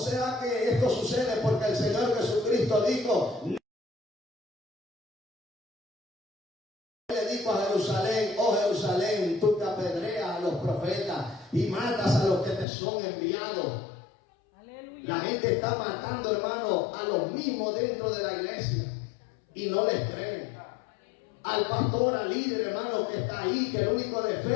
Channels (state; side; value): drops out; right; at 12.7 s